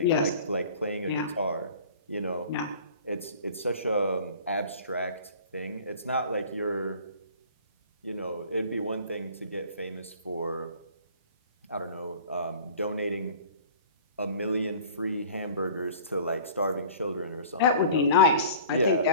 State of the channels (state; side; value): inverted; both; correlation -0.45